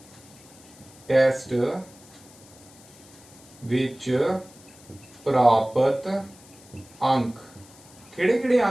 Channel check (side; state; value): left; noise; hiss, 23 dB below the sound